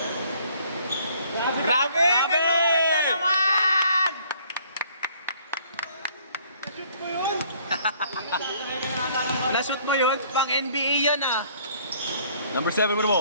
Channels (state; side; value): inverted; both; correlation -0.60